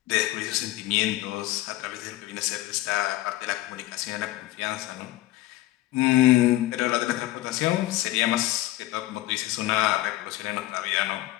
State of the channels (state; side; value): quieter; right; 16.4 dB